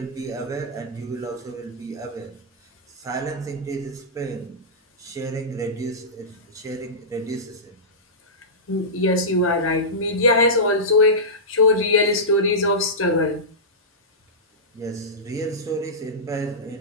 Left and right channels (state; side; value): normal; both; correlation -0.15